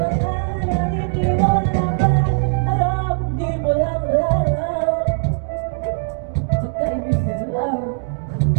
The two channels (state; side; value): silent; left; 65 dB below the other